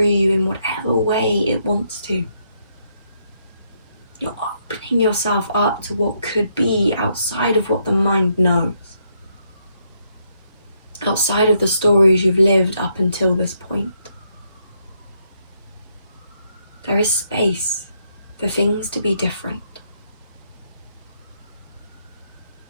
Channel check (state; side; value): inverted; both; correlation -0.76